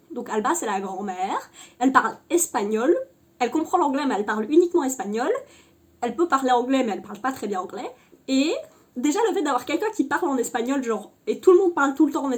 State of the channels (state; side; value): identical; both; correlation 1.00